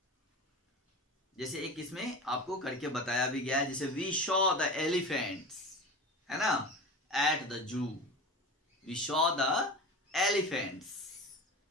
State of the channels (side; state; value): both; normal; correlation 0.31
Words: जैसे एक इसमें आपको करके बताया भी गया है, जैसे वी शॉ द एलिफेंट्स, है ना, at the zoo. We saw the elephants,